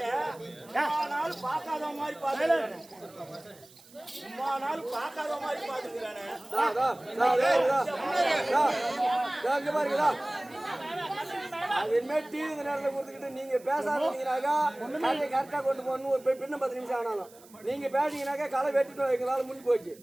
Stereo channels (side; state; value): right; noise; hiss, 24 dB below the sound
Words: சும்மா நாள் பார்க்காத மாதிரி பார்த்துக்கிறானே. சும்மா நாள் பார்க்காத மாதிரி பார்த்துக்கிறானே. அதுமே டிவி நேரத்தில் கொடுத்துக்கிட்டு நீங்க பேசாதீங்கனாக்கா கரெக்டா கொண்டு போகணும். பின்ன 10 நிமிஷம் ஆனாலும் நீங்க பேசிங்கனாக்கா களை வெட்டிட்டு எங்களால முடிஞ்சு போச்சு.